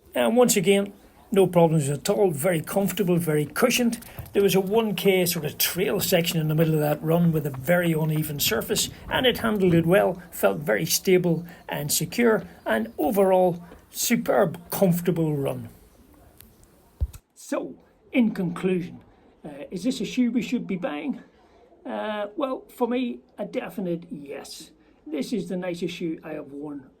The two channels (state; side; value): identical; both; correlation 1.00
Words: And once again, no problems at all, very comfortable, very cushioned. There was a 1k sort of trail section in the middle of that run with a very uneven surface, and it handled it well, felt very stable and secure, and overall, superb, comfortable run. So, in conclusion, is this a shoe we should be buying? Well, for me, a definite yes. This is the nicest shoe I have worn